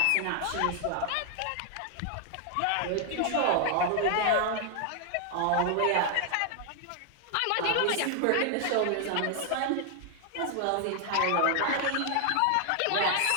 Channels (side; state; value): both; different; correlation 0.00